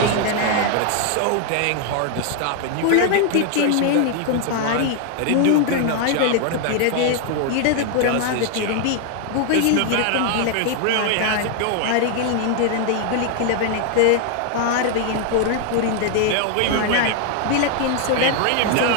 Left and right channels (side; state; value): both; different; correlation 0.00